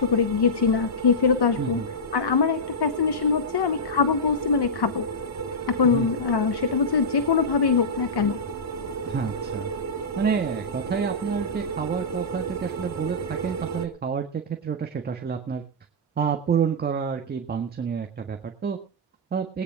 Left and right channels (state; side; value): normal; both; correlation -0.11